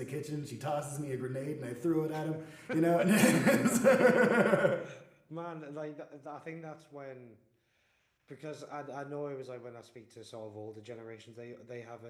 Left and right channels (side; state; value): both; identical; correlation 1.00